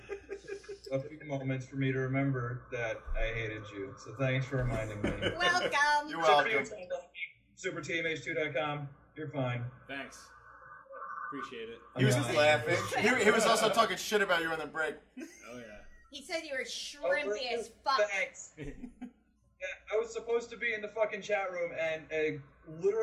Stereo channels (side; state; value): both; identical; correlation 1.00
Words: few moments for me to remember that I hated you. So thanks for reminding me. Welcome. You're welcome. SuperTMH2.com. You're fine. Thanks. Appreciate it. He was just laughing. He was also talking shit about you on the break. Oh, yeah. He said you were shrimpy as fuck. Thanks. Yeah, I was supposed to be in the fucking chat room, and